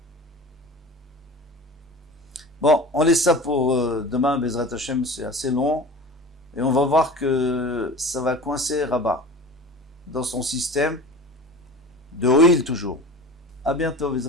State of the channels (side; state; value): both; normal; correlation 0.37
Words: Bon, on laisse ça pour demain, Bezrat Hashem, c'est assez long. Et on va voir que ça va coincer Rabat dans son système de Oil toujours. À bientôt,